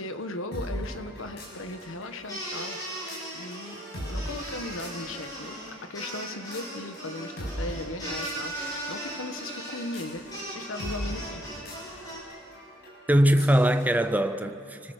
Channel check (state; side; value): normal; both; correlation 0.73